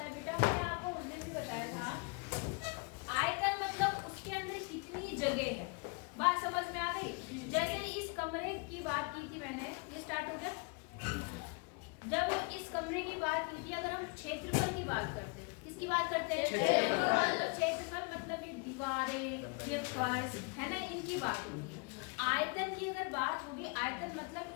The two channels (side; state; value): right; quieter; 32.5 dB